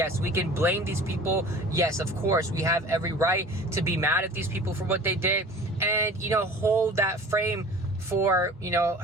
we can blame these people. Yes, of course, we have every right to be mad at these people for what they did and, hold that frame for,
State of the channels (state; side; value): normal; both; correlation 0.42